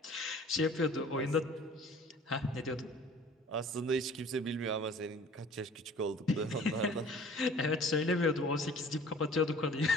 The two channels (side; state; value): both; normal; correlation 0.48